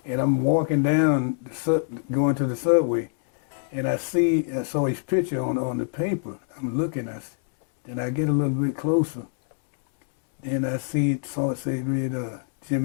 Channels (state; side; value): silent; right; 62 dB below the other